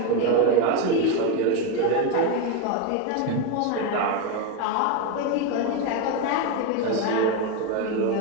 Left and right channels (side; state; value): both; different; correlation 0.03